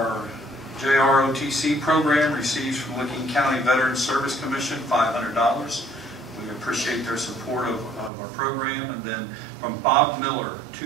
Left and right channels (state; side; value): drops out; left; at 8.1 s